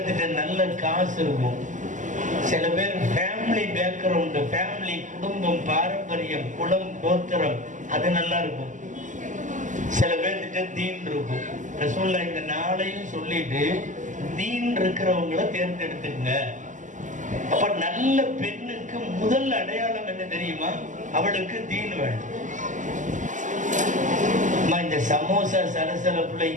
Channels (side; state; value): left; late; 0.37 ms